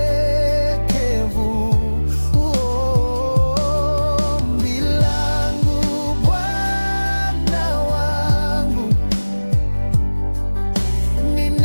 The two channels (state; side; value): inverted; both; correlation -1.00